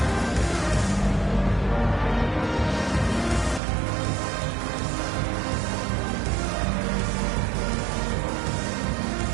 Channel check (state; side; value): drops out; left; at 3.6 s